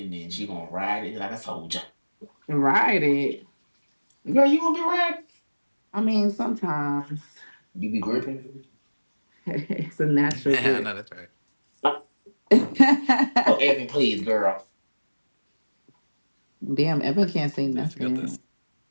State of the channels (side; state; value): both; inverted; correlation -1.00